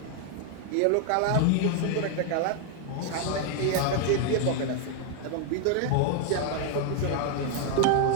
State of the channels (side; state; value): both; different; correlation 0.00